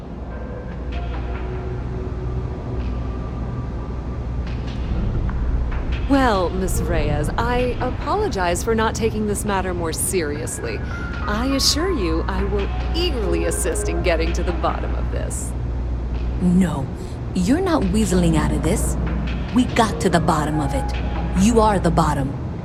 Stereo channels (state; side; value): identical; both; correlation 1.00